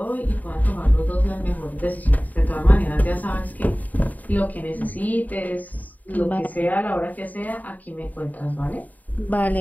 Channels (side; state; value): right; late; 0.077 ms